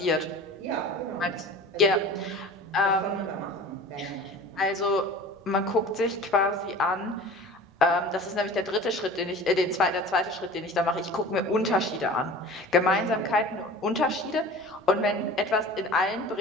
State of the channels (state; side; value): normal; both; correlation 0.40